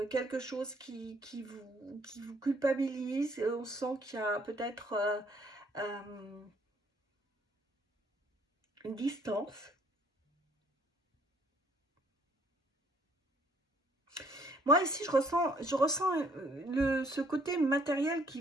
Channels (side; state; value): both; normal; correlation 0.63